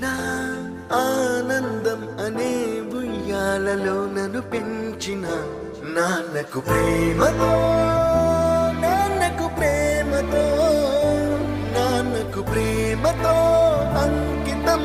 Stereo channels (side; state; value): both; identical; correlation 1.00